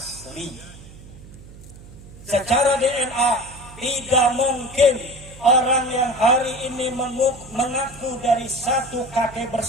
Secara DNA tidak mungkin orang yang hari ini mengaku dari satu kakek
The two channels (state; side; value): noise; right; hum, 18 dB below the sound